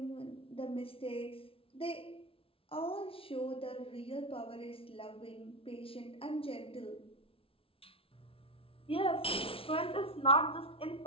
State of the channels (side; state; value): right; late; 0.26 ms